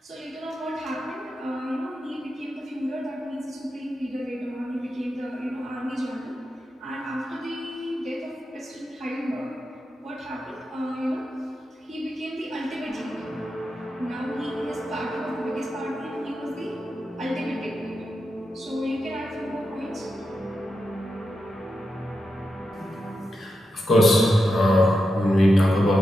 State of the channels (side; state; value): both; normal; correlation 0.88